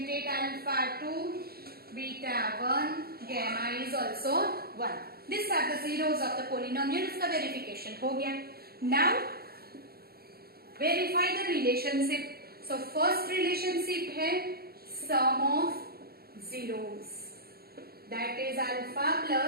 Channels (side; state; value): left; late; 0.45 ms